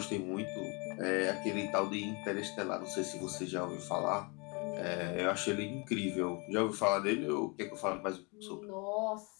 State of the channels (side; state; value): right; quieter; 30.8 dB